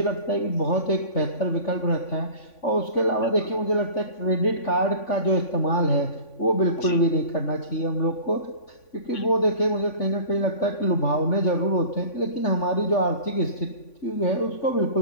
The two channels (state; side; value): late; right; 3.5 ms